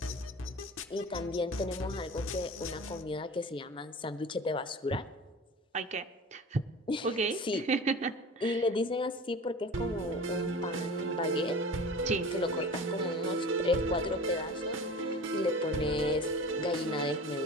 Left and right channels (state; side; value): normal; both; correlation 0.37